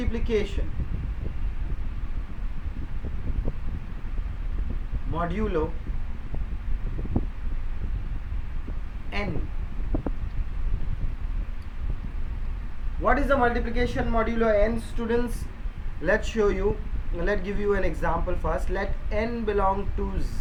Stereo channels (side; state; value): both; identical; correlation 1.00